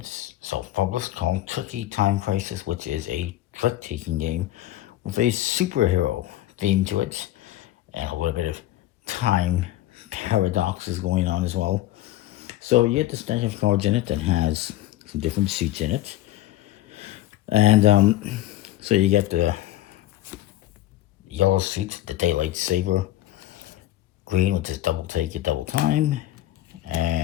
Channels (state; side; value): quieter; right; 14.8 dB